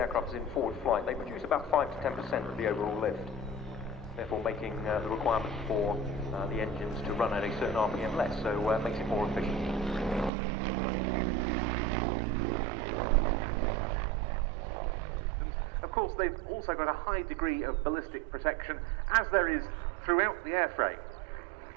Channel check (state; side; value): drops out; left; at 10.3 s